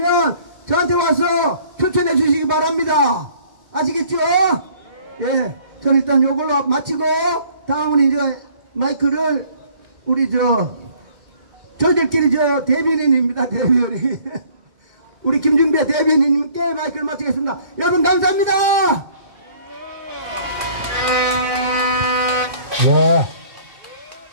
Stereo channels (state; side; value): late; left; 2.2 ms